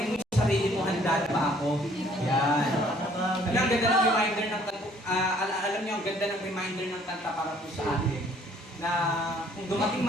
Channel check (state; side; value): normal; both; correlation 0.60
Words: mo yung sarili mo, handa na ba ako? Yan. Alam, ang ganda ng reminder ng alam niyo, ang ganda ng reminder ng kanta para po sa atin na kung dumating